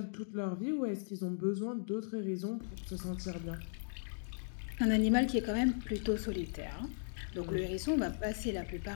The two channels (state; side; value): silent; right; digital silence